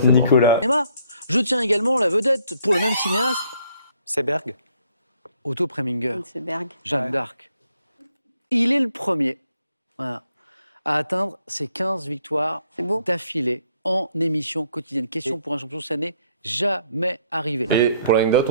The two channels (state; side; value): inverted; both; correlation -0.67